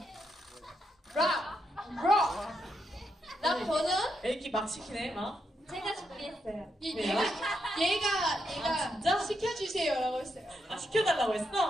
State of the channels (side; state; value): both; normal; correlation 0.82